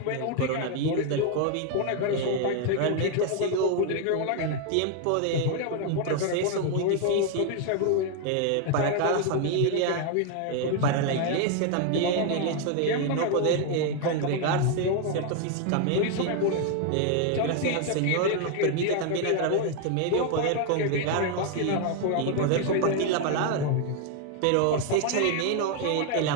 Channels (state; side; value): different; both; correlation 0.01